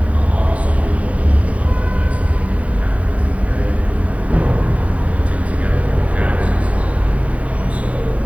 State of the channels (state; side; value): late; left; 0.067 ms